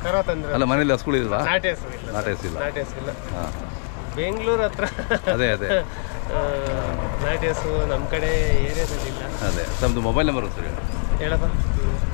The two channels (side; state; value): right; quieter; 38.5 dB